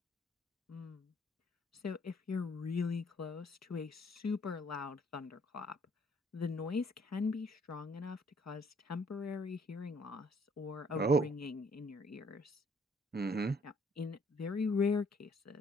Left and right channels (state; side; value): normal; both; correlation 0.63